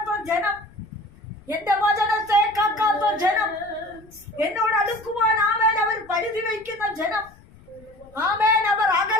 ജനം, എന്റെ വചനത്തെ കാക്കാത്ത ജനം, എന്നോട് അടുക്കുവാൻ അവർ പരിധി വയ്ക്കുന്ന ജനം, അവർ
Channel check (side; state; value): left; noise; rumble, 25 dB below the sound